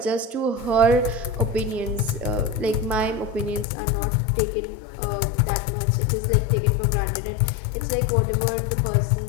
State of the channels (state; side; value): drops out; right; at 3.7 s